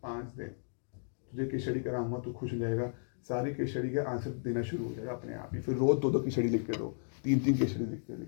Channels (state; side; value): silent; right; digital silence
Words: 5 दिन तुझे केस स्टडी कराऊंगा, तू खुश हो जाएगा। सारे केस स्टडी के आंसर देना शुरू हो जाएगा अपने आप ही। फिर रोज 2-2 केस स्टडी लिख के दो, 3-3 केस स्टडी लिख